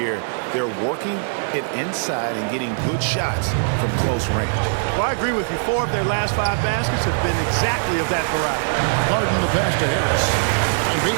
They're working it inside and getting good shots from close range. Well, I agree with you. 4 of their last 5 baskets have been exactly of that variety. Harden the pass to Harris.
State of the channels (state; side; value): silent; left; digital silence